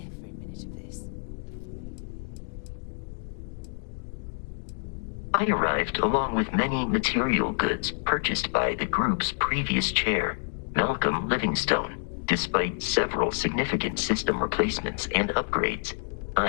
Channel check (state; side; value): silent; right; digital silence